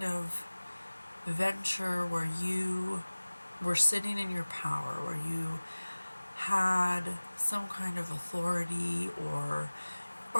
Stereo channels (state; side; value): inverted; both; correlation -1.00